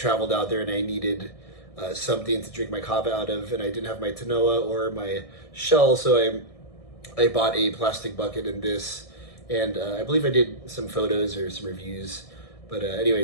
out there and I needed something to drink my kava out of, and I didn't have my tanoa or my shell, so I bought a plastic bucket in this, and I believe I did some photos or some reviews. But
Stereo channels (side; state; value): right; late; 1.6 ms